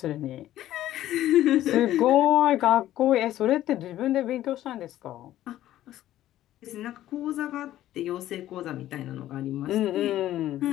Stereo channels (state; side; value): quieter; right; 13.5 dB